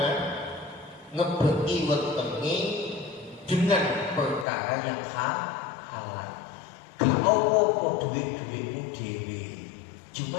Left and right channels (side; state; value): right; drops out; at 4.5 s